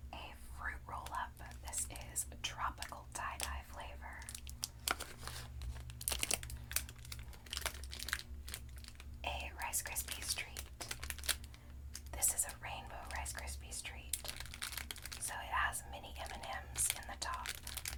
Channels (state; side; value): identical; both; correlation 1.00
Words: A fruit roll-up. This is tropical tie-dye flavor. A Rice Krispies treat. This is a rainbow Rice Krispies treat. So it has mini M&Ms in the top.